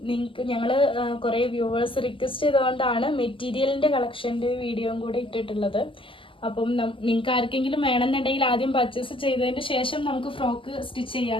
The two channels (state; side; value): late; right; 0.25 ms